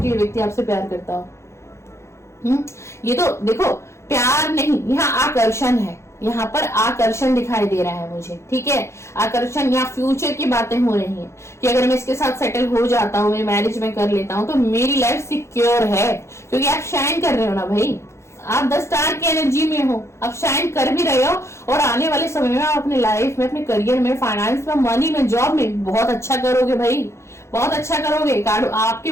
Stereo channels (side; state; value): right; late; 0.13 ms